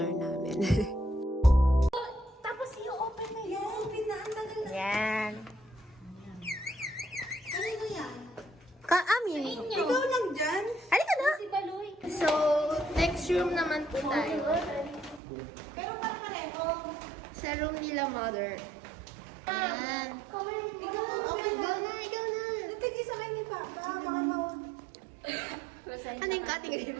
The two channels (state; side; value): drops out; left; at 15.2 s